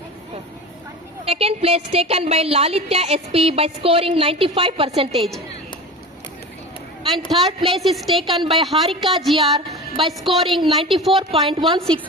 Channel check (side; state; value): both; normal; correlation 0.31